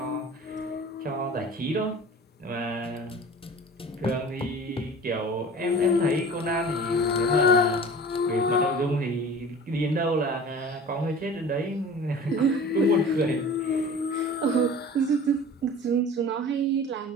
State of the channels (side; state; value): both; normal; correlation 0.41